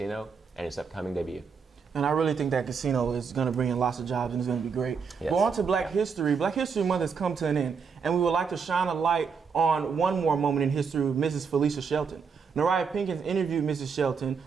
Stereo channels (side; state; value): left; quieter; 5.8 dB